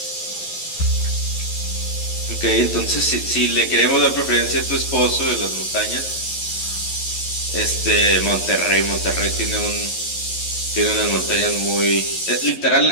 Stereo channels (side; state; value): right; late; 11 ms